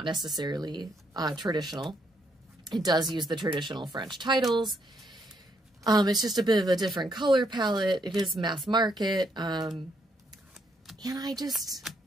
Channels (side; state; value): both; normal; correlation 0.74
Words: necessarily traditional. It does use the traditional French titles. It's just a bit of a different color palette. It is mass market. And I just,